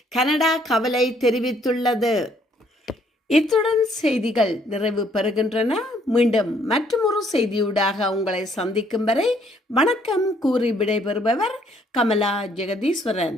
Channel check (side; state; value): both; normal; correlation 0.65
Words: கனடா கவலை தெரிவித்துள்ளது. இத்துடன் செய்திகள் நிறைவு பெறுகின்றன. மீண்டும் மற்றொரு செய்தியூடாக உங்களை சந்திக்கும் வரை வணக்கம் கூறி விடைபெறுபவர் கமலா